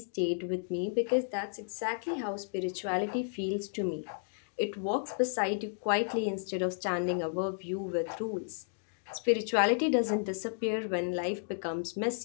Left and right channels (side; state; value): right; silent; digital silence